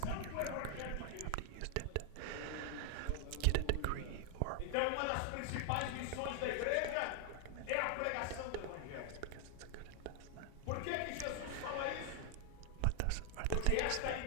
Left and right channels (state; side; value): different; both; correlation 0.00